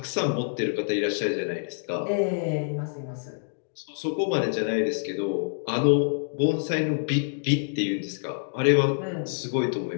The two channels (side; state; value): right; silent; digital silence